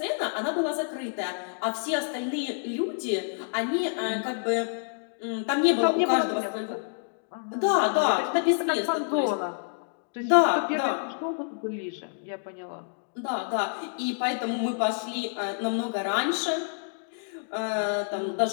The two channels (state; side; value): silent; right; digital silence